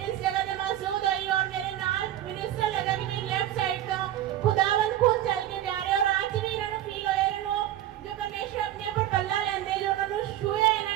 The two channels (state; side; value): quieter; left; 12.4 dB